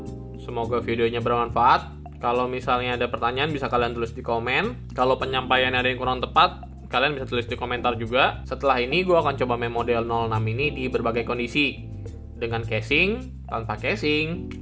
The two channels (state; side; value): identical; both; correlation 1.00